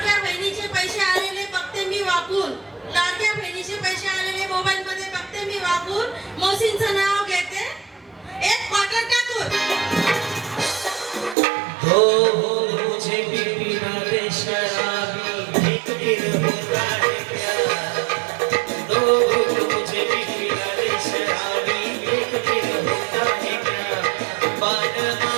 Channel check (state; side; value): drops out; left; at 11.4 s